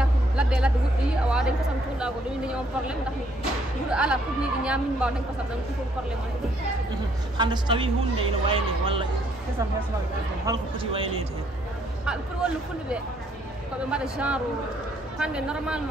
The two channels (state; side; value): normal; both; correlation 0.68